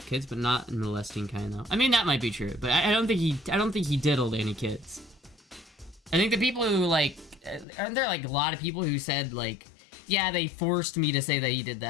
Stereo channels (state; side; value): drops out; right; at 7.7 s